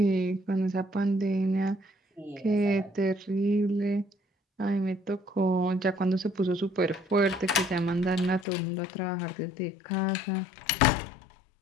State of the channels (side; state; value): right; drops out; at 8.5 s